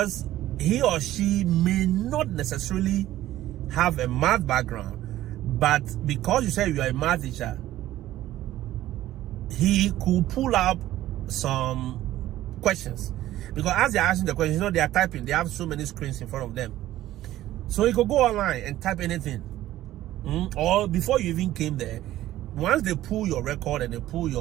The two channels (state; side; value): quieter; left; 14.3 dB